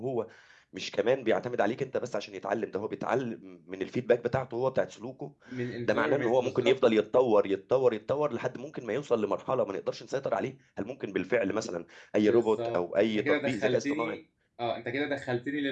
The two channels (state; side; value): identical; both; correlation 1.00